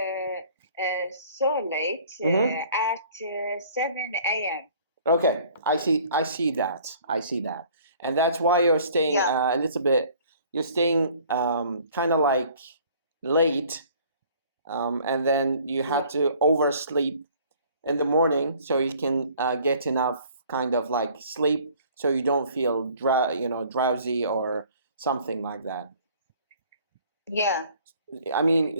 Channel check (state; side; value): inverted; both; correlation -0.54